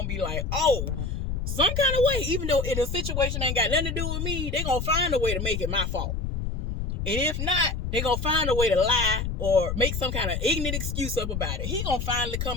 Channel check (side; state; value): left; noise; rumble, 3 dB below the sound